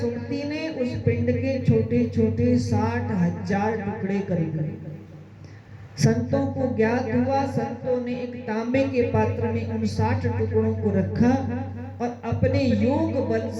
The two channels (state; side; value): identical; both; correlation 1.00